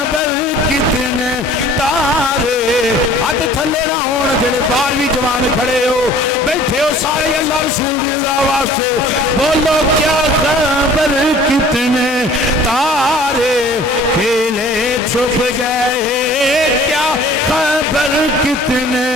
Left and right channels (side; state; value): both; normal; correlation 0.50